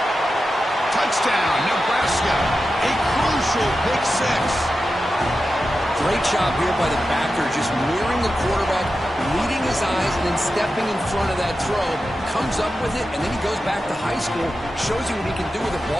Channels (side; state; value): both; normal; correlation 0.91